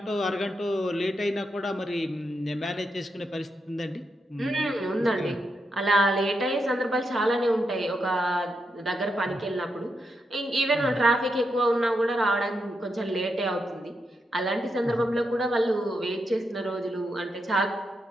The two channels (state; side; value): normal; both; correlation 0.84